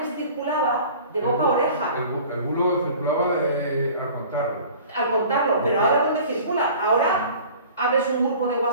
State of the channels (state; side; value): inverted; both; correlation -0.45